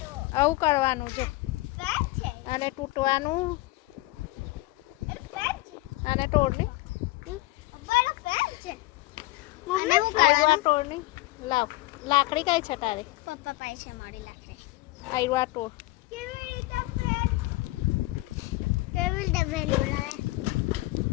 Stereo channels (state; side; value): quieter; right; 20.1 dB